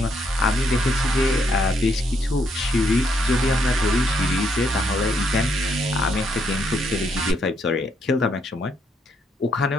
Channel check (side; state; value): both; normal; correlation 0.74